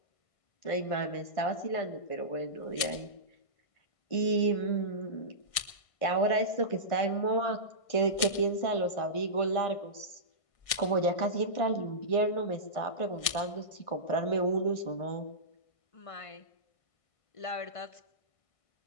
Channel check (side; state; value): right; late; 1.6 ms